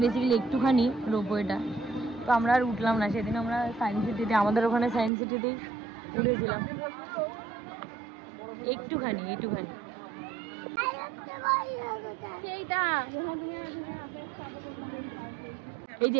বেসিক্যালি একটুখানি রোপওয়েটা, তো আমরা আর উঠলাম না। সেদিন আমরা সায়েন্স সিটিতে, আমাদের ওখানে সায়েন্স সিটিতেই উঠেছিলাম একটুখানি একটুখানি। এই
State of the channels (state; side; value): drops out; left; at 5.1 s